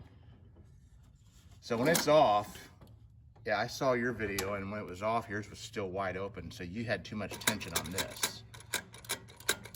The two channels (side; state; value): both; identical; correlation 1.00